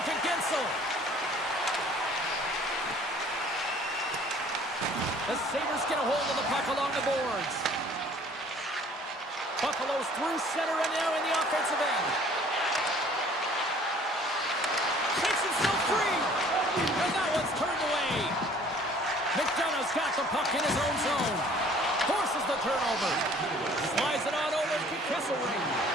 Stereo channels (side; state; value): both; normal; correlation 0.54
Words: to Gensel. The Sabres get a hold of the puck along the boards. Buffalo's through center and now in the offensive end. Takes himself free. And that one's turned away. McDonough's got the puck in his own zone. Forces the turnover. Slides it on over to Kesselring.